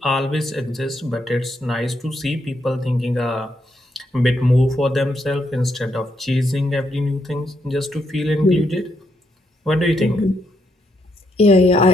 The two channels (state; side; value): normal; both; correlation 0.77